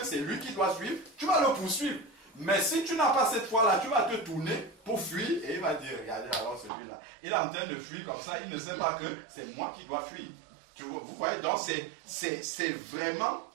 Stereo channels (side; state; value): left; drops out; at 6.7 s